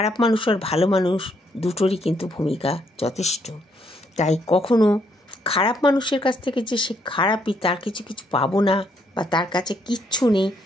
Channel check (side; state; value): both; normal; correlation 0.72